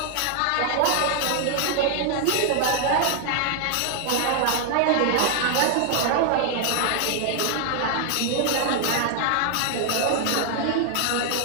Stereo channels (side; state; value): both; different; correlation 0.00